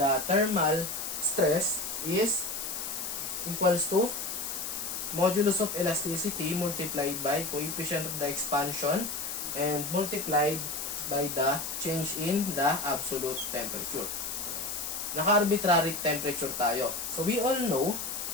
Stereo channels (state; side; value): noise; left; hiss, 4 dB below the sound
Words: thermal stress is equals to modulus of elasticity multiplied by coefficient of the expansion and multiplied by the change in the absolute temperature. Naka-arbitrary temperature tayo. So, we all know